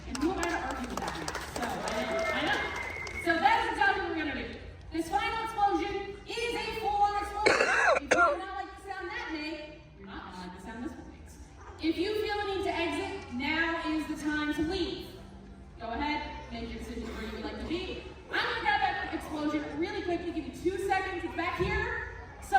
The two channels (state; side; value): identical; both; correlation 1.00